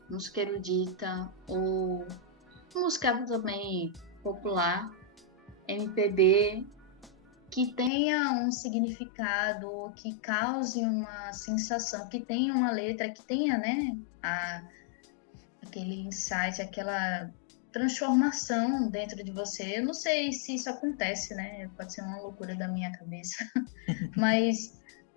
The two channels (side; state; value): right; drops out; at 7.9 s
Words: música erudita, ou música também popular, MPB, que tenha um significado, que cause uma sensação, que tenha uma letra, que tenha, né, aquele insight, aquela transformação dentro de você. Eu não sei se isso acontece, né? Pode ser uma loucura da minha cabeça, mas